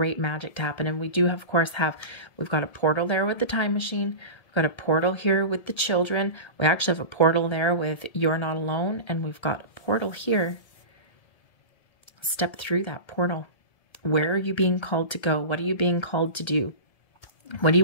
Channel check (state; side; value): late; right; 1.7 ms